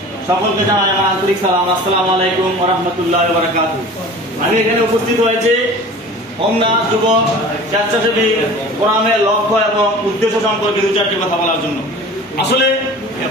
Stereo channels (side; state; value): both; normal; correlation 0.41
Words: সকলকে জানাই আমার আন্তরিক সালাম। আসসালামু আলাইকুম ওয়া রাহমাতুল্লাহি ওয়া বারাকাতুহু। আমি এখানে উপস্থিত হয়েছি হোমনা যুব স্বেচ্ছাসেবী কোরআনের লক্ষ্য এবং উদ্দেশ্য সম্পর্কে দু চারটি কথা বলার জন্য। আসলে